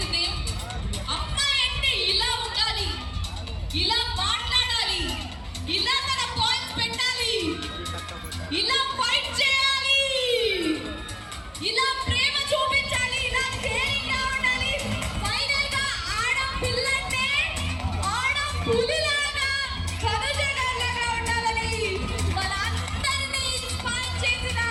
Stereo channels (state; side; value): identical; both; correlation 1.00